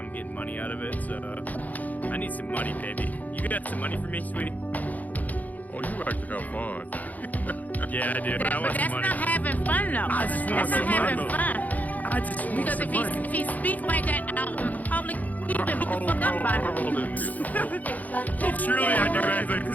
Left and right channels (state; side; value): late; right; 0.079 ms